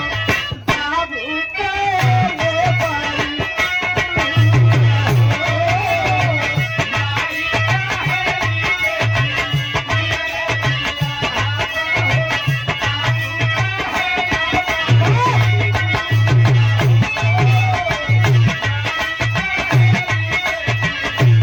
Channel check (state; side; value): identical; both; correlation 1.00